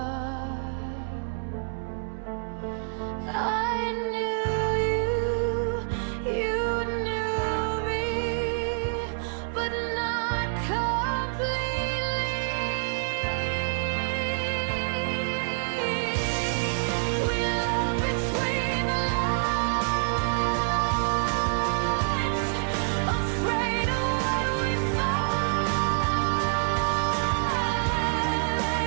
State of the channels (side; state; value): left; silent; 60 dB below the other